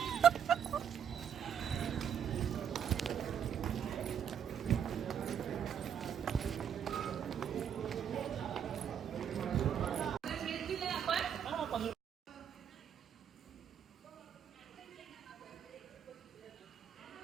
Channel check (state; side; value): quieter; left; 8.4 dB